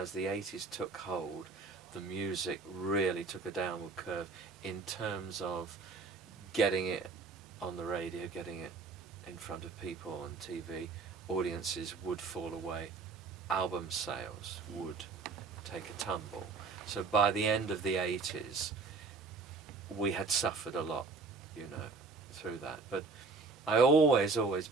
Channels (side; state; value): left; quieter; 4.3 dB